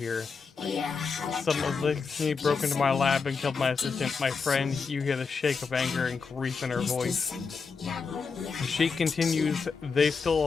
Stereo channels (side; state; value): right; quieter; 5.1 dB